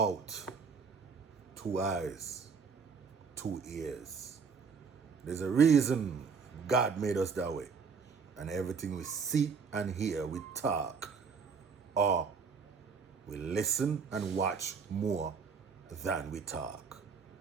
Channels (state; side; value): quieter; left; 5.5 dB